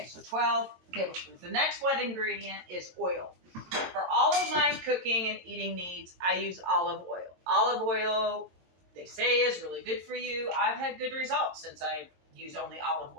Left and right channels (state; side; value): late; left; 22 ms